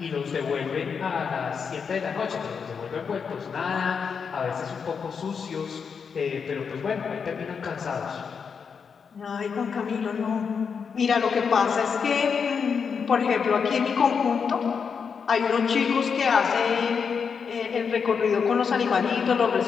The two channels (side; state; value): right; quieter; 6.2 dB